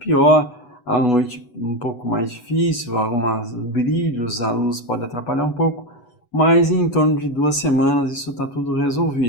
à noite um pouco mais difícil, alguns brilhos, a luz pode atrapalhar um pouco, mas em torno de 2 semanas isso está tudo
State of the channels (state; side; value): late; right; 8.1 ms